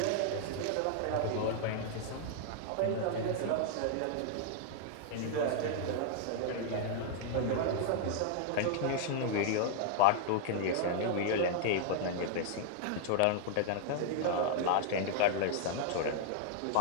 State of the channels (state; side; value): different; both; correlation -0.01